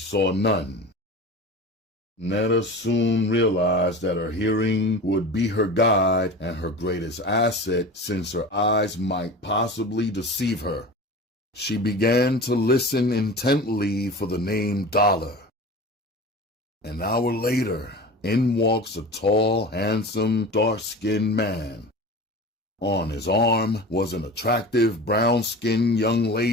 none. Netta soon realized that her hearing would be her guide and her greatest asset, since her eyes might possibly deceive her. She began to listen intently for the name Dollar. An hour later, in walks a tall, handsome, dark-skinned man. On his arm was an attractive, brown-skinned young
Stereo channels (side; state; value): both; normal; correlation 0.34